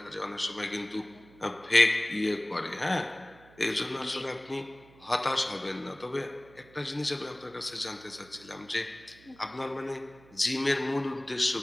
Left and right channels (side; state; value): right; noise; hum, 24 dB below the sound